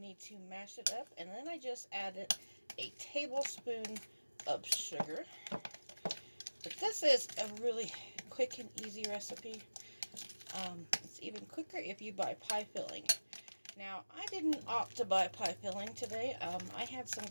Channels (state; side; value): inverted; both; correlation -1.00